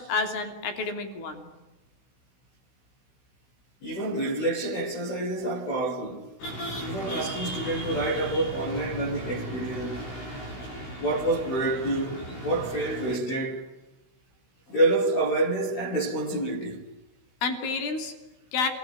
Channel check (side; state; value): right; late; 16 ms